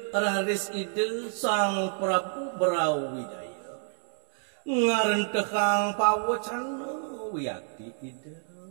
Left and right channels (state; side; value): silent; left; 59 dB below the other